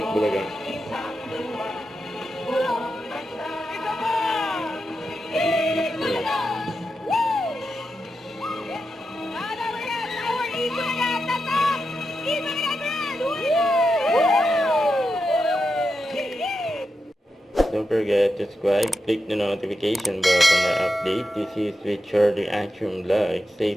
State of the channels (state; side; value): normal; both; correlation 0.88